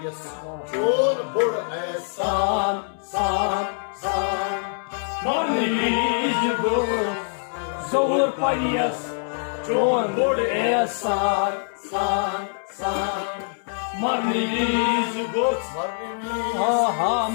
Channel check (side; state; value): right; silent; 63 dB below the other